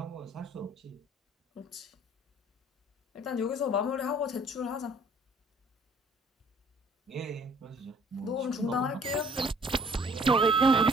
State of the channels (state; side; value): normal; both; correlation 0.57